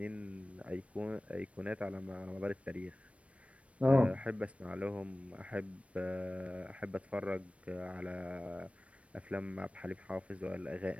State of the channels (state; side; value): late; left; 0.063 ms